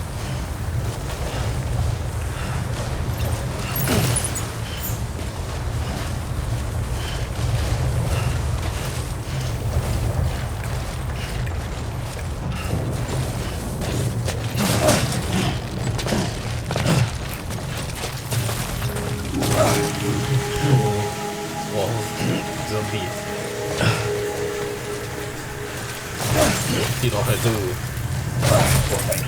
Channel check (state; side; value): identical; both; correlation 1.00